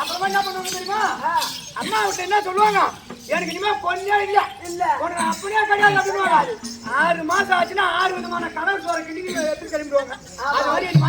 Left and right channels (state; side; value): identical; both; correlation 1.00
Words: அப்புறமா என்ன பண்ணுவாங்க தெரியுமா? அம்மா விட்டு என்ன சொல்லுவாங்க? எனக்கு இனிமே பொண்ணே இல்ல உனக்கு அப்படியே கிடையாது அப்படின்னுவாங்க. 6 மாசம் ஆச்சுன்னா 6 விதமான கடல் சோற கிண்டி எடுத்து கிளம்பிடுவாங்க. அது மாதிரி